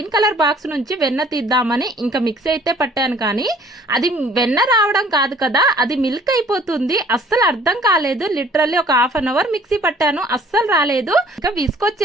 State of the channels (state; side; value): normal; both; correlation 0.55